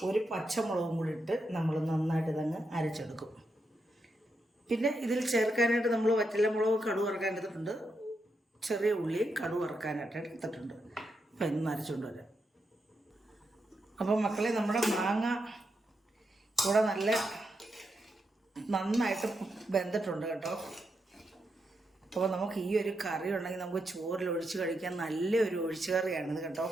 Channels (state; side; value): normal; both; correlation 0.83